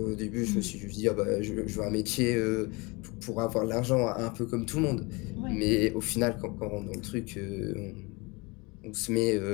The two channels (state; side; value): quieter; right; 26.8 dB